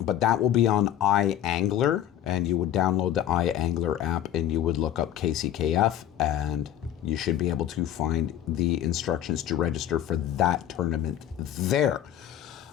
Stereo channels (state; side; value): quieter; right; 11.5 dB